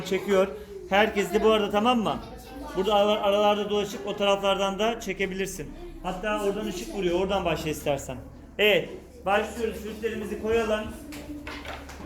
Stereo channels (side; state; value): both; identical; correlation 1.00